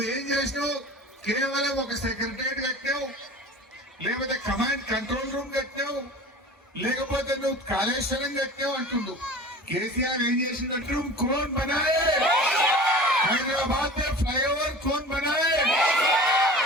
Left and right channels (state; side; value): normal; both; correlation 0.38